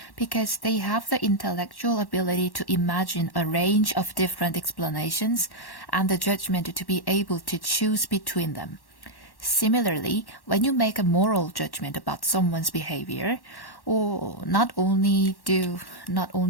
because they have the intellectual ability to imagine a range of different explanations and the judgment to be able to choose between them. Similarly, when you make a moral judgment about someone's behavior, or not only do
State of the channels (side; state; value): right; late; 1.1 ms